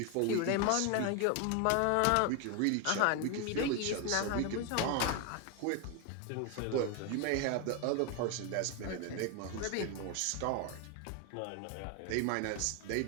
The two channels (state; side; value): different; both; correlation 0.01